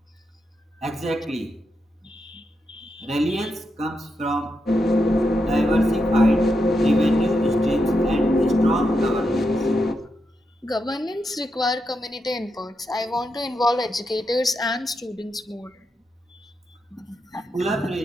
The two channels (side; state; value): both; normal; correlation 0.85